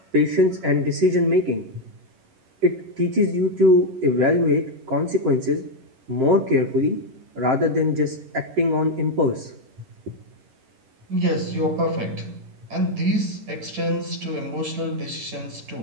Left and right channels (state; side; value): late; left; 11 ms